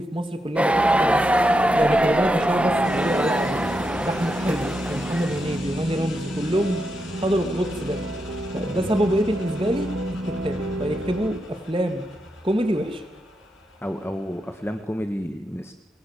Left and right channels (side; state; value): both; normal; correlation 0.85